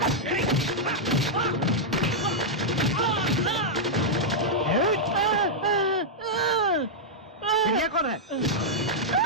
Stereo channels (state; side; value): normal; both; correlation -0.07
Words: ये कौन है?